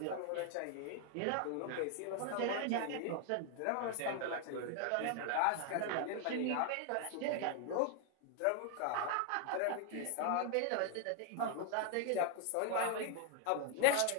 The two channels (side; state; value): both; different; correlation 0.00